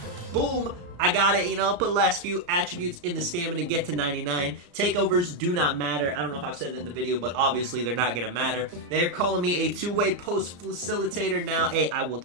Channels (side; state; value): left; late; 34 ms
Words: Boom. I got it, you know, put last few attributes in the stamina, get to 99. Takeovers do not matter. I don't know if I've said it in the video, but obviously they're not going to matter. They're calling me a two-way post facilitator now. Hey, I will